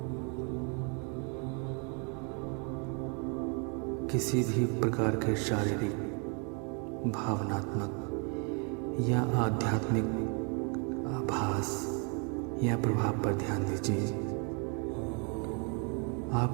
किसी भी प्रकार के शारीरिक, भावनात्मक या आध्यात्मिक आभास या प्रभाव पर ध्यान दीजिए।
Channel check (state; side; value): quieter; left; 36.6 dB